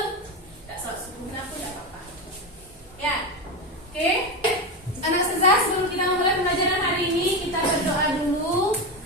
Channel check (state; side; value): normal; both; correlation 0.16